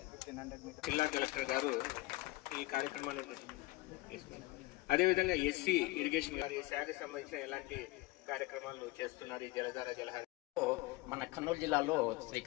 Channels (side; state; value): right; quieter; 20.6 dB